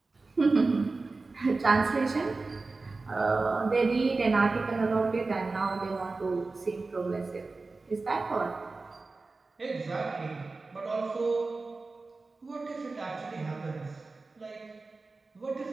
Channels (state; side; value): quieter; left; 3.7 dB